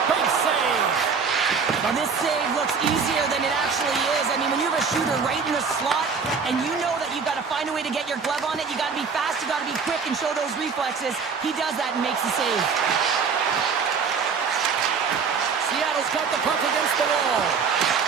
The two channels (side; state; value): left; quieter; 5.6 dB